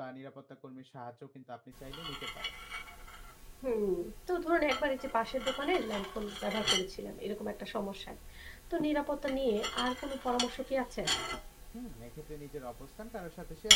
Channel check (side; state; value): both; identical; correlation 1.00